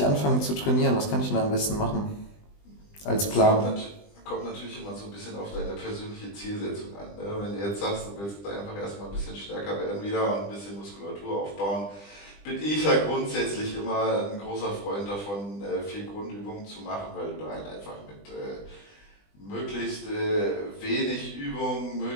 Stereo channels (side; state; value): right; late; 20 ms